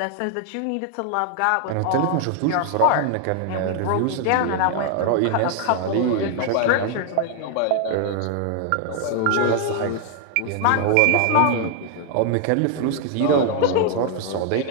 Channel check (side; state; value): both; different; correlation 0.00